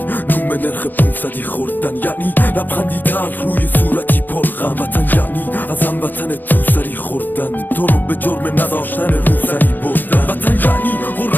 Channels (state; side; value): late; right; 0.088 ms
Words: نوم نرخ 500 خوردن، یعنی لبخندی تلخ روی صورتی پرغم. وطن یعنی از هموطن تو سری خوردن، تو رو به جرم نداشتن روسری بردن. وطن یعنی